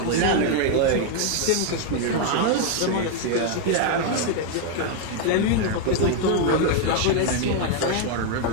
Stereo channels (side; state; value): both; different; correlation 0.00